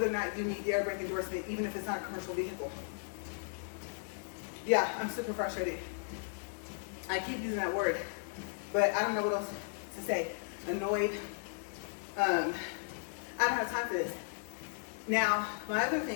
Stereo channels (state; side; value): silent; right; digital silence